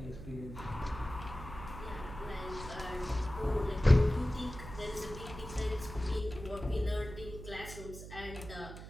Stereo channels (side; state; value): right; noise; hum, 12 dB below the sound